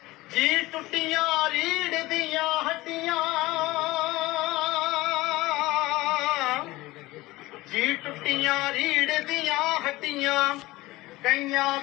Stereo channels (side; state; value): right; quieter; 19.3 dB